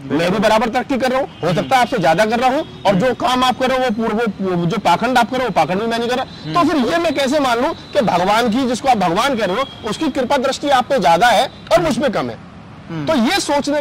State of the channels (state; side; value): identical; both; correlation 1.00